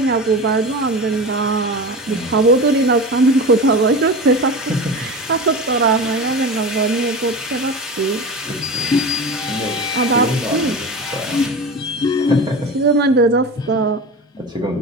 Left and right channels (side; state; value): both; normal; correlation 0.29